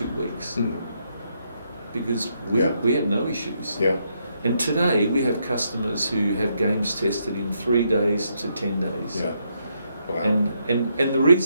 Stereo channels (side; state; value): both; inverted; correlation -0.77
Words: weeks. Because we had no issues. Yeah. And today we have customers who have games tested in 3 days to 10 days. Yeah. Wow. And the